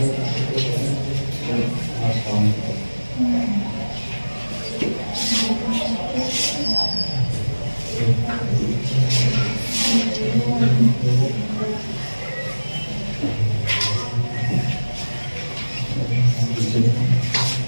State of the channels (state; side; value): inverted; both; correlation -1.00